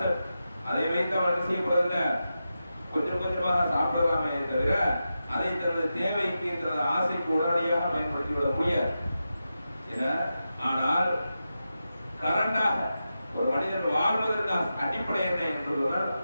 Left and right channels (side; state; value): both; inverted; correlation -0.90